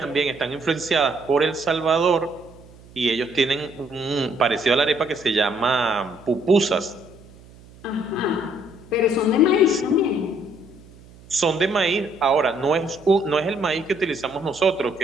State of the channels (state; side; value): noise; right; hum, 23 dB below the sound